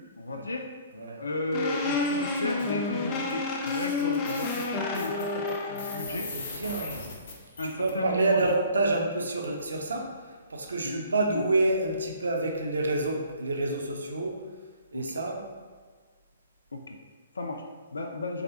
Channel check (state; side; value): inverted; both; correlation -0.55